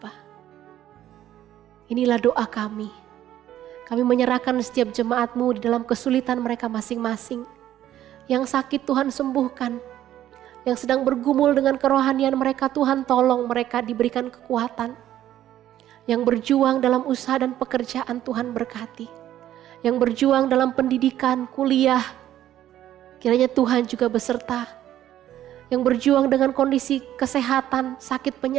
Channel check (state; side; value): quieter; left; 12.3 dB